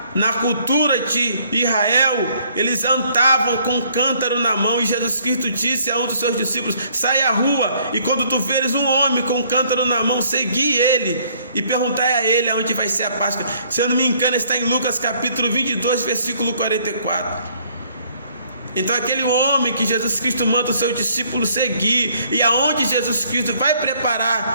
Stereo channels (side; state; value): both; inverted; correlation -0.62